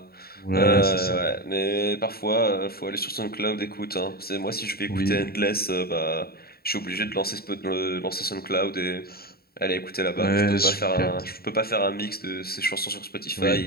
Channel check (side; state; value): right; late; 0.45 ms